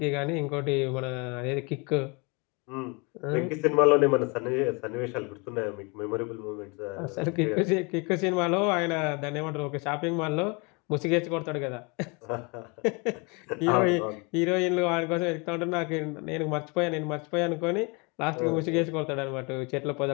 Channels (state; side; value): quieter; right; 30.4 dB